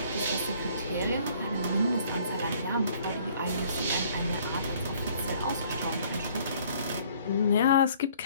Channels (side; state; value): both; inverted; correlation -0.58